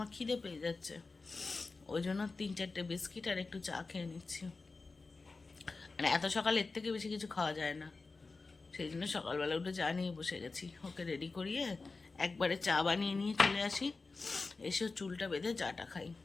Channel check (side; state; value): right; quieter; 3.9 dB